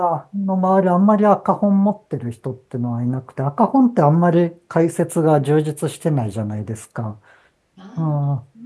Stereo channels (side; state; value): both; identical; correlation 1.00